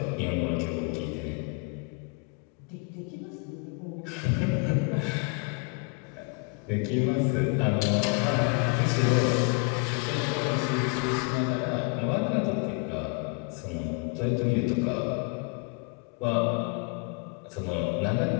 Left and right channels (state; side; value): quieter; right; 33.6 dB